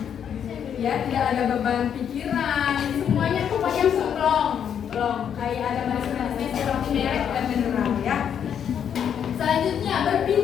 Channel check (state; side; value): quieter; right; 8.5 dB